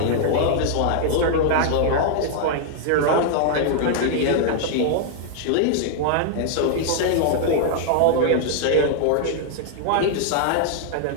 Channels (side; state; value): both; different; correlation -0.01